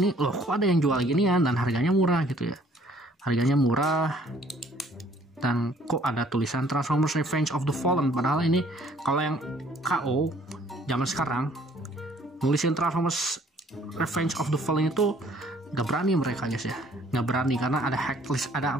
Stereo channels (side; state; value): both; normal; correlation 0.59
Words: loh kok ada yang jual gini ya, dan harganya murah gitu ya. Harganya murah. Dan kok ada tulisan Transformers Revenge of the Fallen, padahal ini kalau yang KO zaman sekarang nulisin Transformers Revenge of the Fallen itu nggak berani mereka guys ya, nggak berani karena ada hak